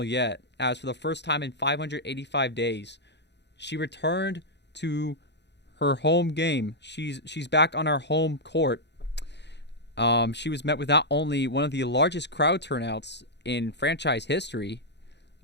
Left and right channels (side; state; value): right; late; 0.50 ms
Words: yet, as for the first time in 585 days, she returned to her home game. She's back on our home court. She was met with not only one of the largest crowd turnouts in franchise history,